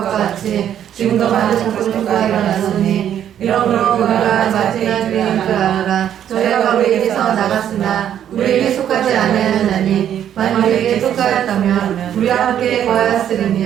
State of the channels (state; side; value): quieter; left; 10.0 dB